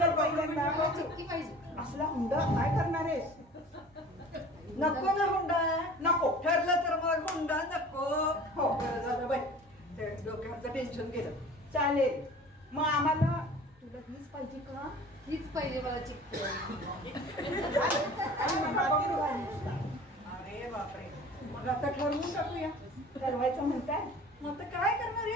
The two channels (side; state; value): both; normal; correlation 0.43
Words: पहिल्यांदा मला चिक्की पाहिजे. असला हुंडा काय करणार आहेस? नको ना हुंडा? नको. ठरलं तर मग हुंडा नको. हो. बरं झालं बाई, ते डोक्याचं टेन्शन गेलं. चालेल. मग आम्हाला तुला हीच पाहिजे का? हीच पाहिजे मला चिक्की. अरे बापरे, मग आता ठरवून टाकूया. ठरवायचं म्हणताय? मग आता काय करणार? हे